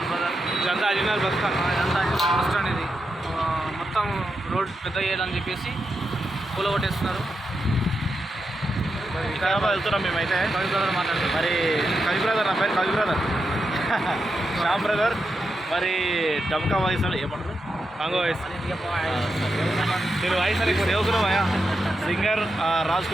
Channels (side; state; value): both; normal; correlation 0.86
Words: బ్రదర్, ఇదంతా అజినార్ బస్ స్టాండ్. ఇది మొత్తం రోడ్ పెద్ద చేయాలని చెప్పేసి కూలగొట్టేస్తున్నారు. వికారాబాద్ వెళ్తున్నాం మేమైతే. కవి బ్రదర్ మాట్లాడుతున్నాం. మరి కవి బ్రదర్, నా పేరు కవి బ్రదర్, శ్యామ్ బ్రదర్. మరి డబ్కా వాయిస్ ఏమంటారు, కాంగో వాయిస్. నేను వాయిస్ అని సేవకులు సింగర్ రాజ్